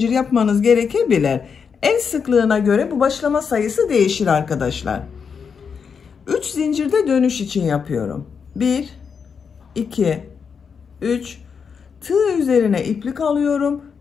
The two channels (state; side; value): quieter; right; 6.2 dB